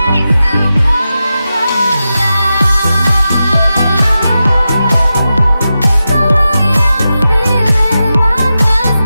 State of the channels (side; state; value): both; inverted; correlation -0.91